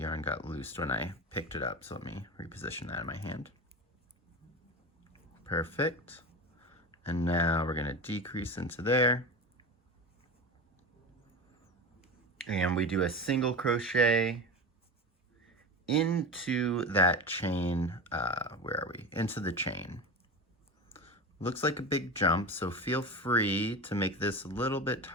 got loosed when I picked it up, so let me reposition that in my hand. Perfect. And now we're going to decrease into there. And we do a single crochet into that chain. Where are we? Into the chain. Looks like a big jump, so feel free to make this a little bit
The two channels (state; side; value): normal; both; correlation 0.26